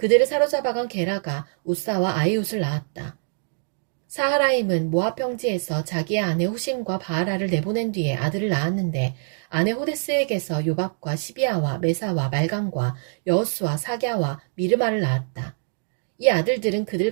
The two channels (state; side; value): silent; left; digital silence